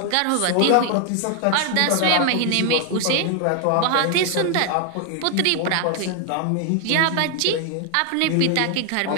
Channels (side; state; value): both; different; correlation 0.00